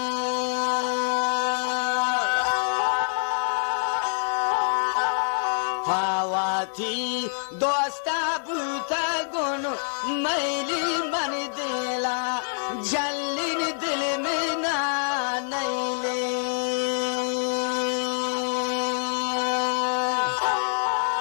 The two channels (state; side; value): silent; right; digital silence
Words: हवा थी दोस्ता बूता गुन मैली मंदिला जल्ली दिल में ना नैली